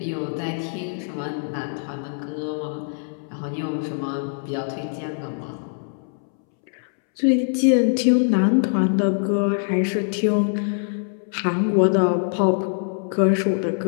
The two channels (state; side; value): silent; right; 63 dB below the other